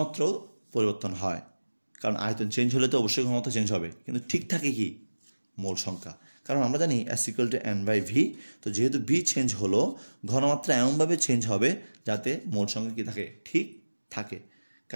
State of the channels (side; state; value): both; inverted; correlation -1.00